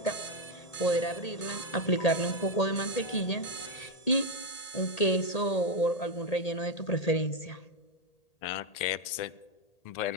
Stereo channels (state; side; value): late; right; 1.8 ms